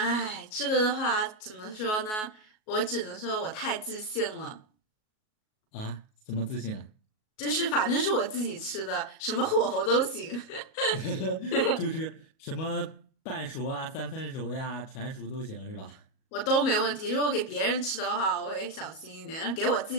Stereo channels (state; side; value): late; right; 38 ms